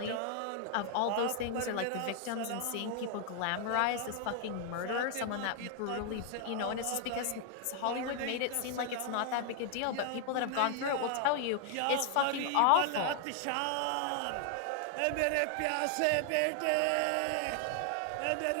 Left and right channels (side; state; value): both; different; correlation 0.00